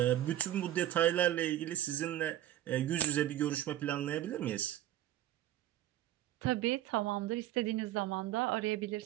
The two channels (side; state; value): left; quieter; 13.2 dB